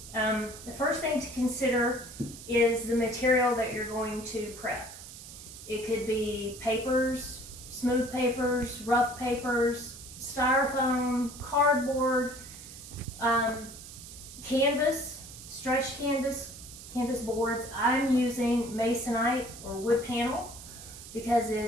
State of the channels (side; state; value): right; noise; hiss, 14 dB below the sound